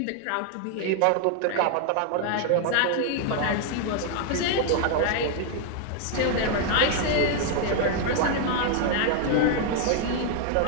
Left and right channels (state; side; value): different; both; correlation 0.00